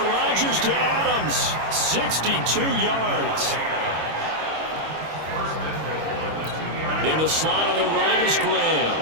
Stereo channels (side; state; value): left; late; 25 ms